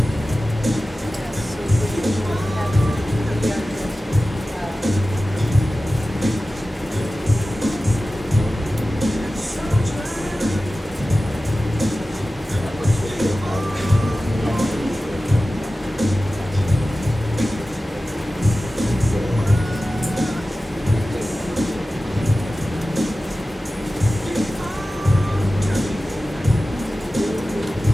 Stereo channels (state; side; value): normal; both; correlation 0.95